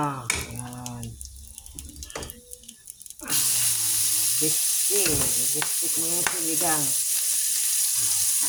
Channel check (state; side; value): identical; both; correlation 1.00